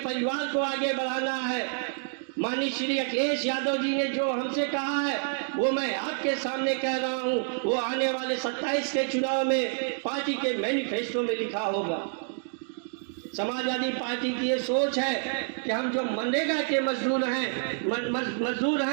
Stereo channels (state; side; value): silent; left; 59 dB below the other